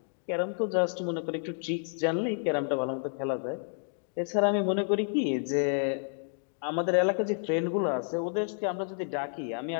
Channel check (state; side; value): silent; right; digital silence